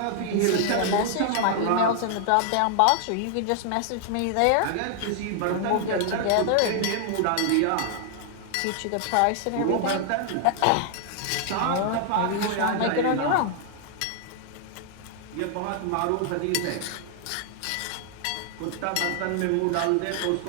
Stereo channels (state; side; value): different; both; correlation 0.00